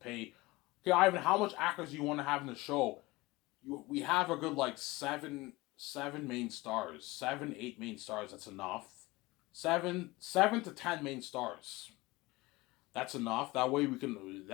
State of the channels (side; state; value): right; quieter; 21.4 dB